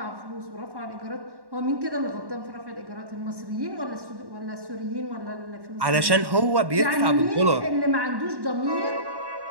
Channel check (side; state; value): left; late; 1.1 ms